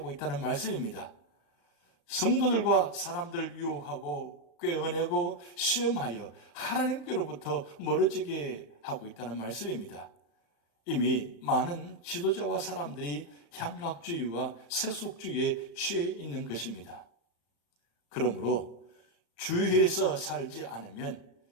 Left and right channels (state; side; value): late; right; 35 ms